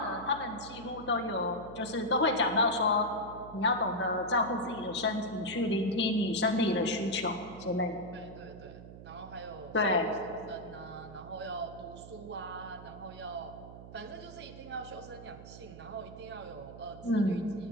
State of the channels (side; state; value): right; noise; hum, 14 dB below the sound